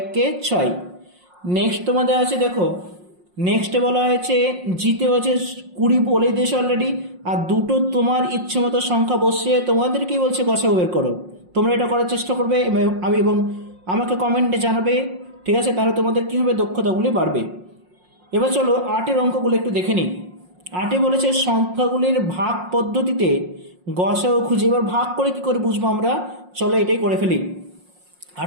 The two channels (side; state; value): left; late; 5.6 ms